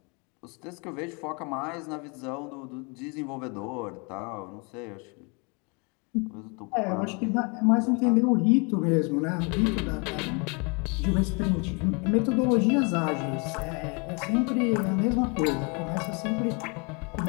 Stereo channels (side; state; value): right; quieter; 33.0 dB